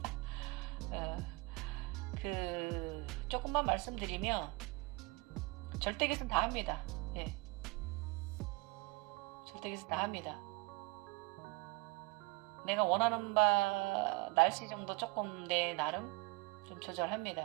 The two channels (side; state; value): left; quieter; 24.5 dB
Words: 조금만 말씀드리면 절대기선 다 합니다. 예. 절대기선 다 합니다. 내가 원하는 바 날씨 정도 조금 내 나름 좀